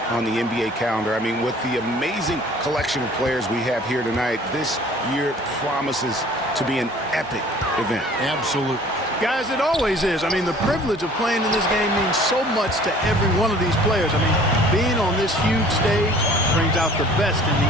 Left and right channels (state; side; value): normal; both; correlation 0.51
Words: on the NBA calendar. I mean, with the amazing collection of players we have here tonight, this year promises to be an epic event. Absolutely. Guys, it always is. I mean, the privilege of playing in this game means so much to every one of these players. I mean, being on this huge stage brings out the best in